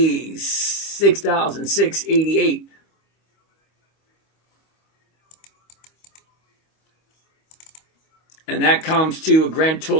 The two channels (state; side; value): late; right; 25 ms